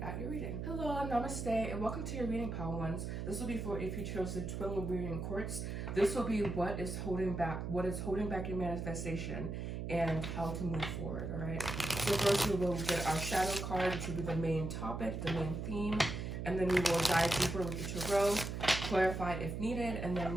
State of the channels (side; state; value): right; noise; hum, 4 dB below the sound